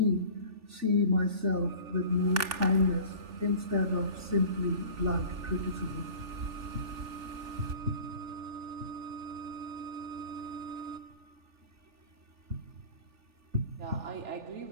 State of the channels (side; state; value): left; late; 3.4 ms